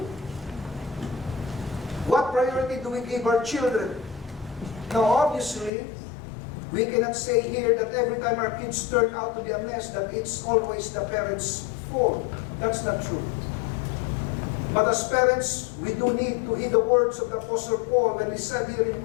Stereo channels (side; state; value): right; drops out; at 5.7 s